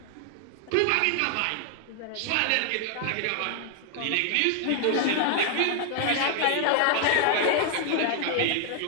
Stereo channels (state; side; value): different; both; correlation 0.00